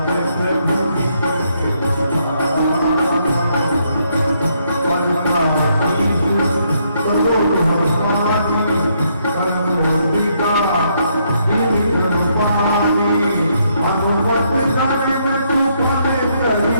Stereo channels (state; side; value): inverted; both; correlation -0.74